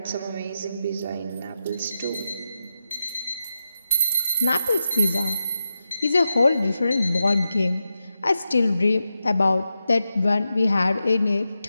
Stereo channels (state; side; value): inverted; both; correlation -0.89